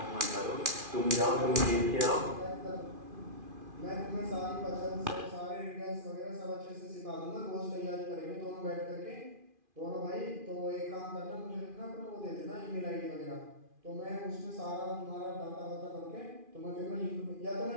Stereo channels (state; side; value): late; left; 2.4 ms